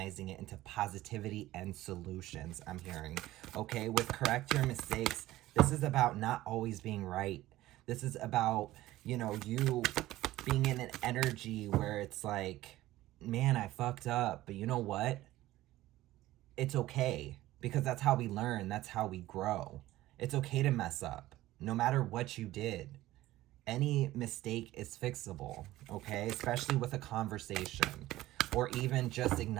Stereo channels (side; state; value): left; quieter; 16.1 dB